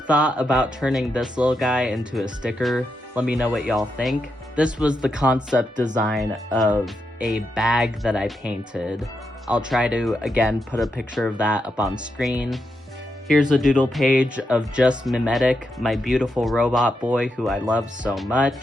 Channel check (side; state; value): both; normal; correlation 0.84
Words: thought about turning this little guy into a sticker. Let me know what y'all think. This was the concept design of a bag that I painted. I'll try to, again, put a picture of that up on screen. Here's a doodle page of just Mimetic, my beautiful robot boy who I love so